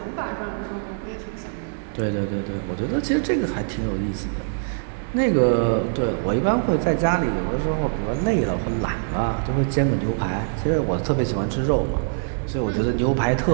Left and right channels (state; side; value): silent; left; 56 dB below the other